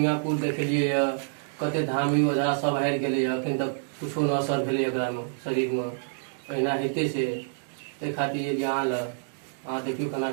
देखलिए, कते धामी ओझा सब हारि गेलै। अखन तक कुछो न असर भेलै एकरा में, शरीर में। अहिना हेते से ताहि खातिर अहाँ लग अहाँ देखियो केना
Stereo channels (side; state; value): left; silent; digital silence